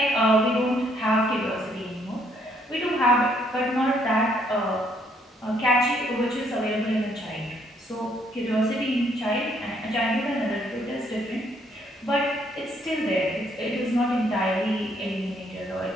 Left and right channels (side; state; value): both; normal; correlation 0.68